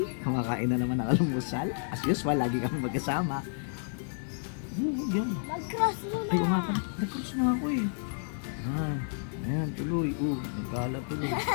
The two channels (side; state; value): right; silent; digital silence